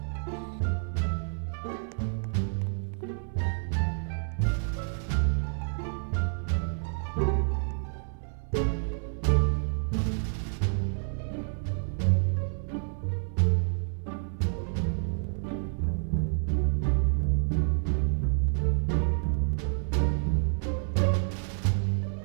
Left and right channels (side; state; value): left; silent; 59 dB below the other